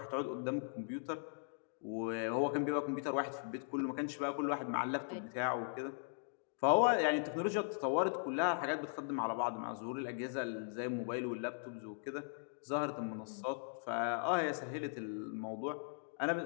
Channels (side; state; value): right; silent; digital silence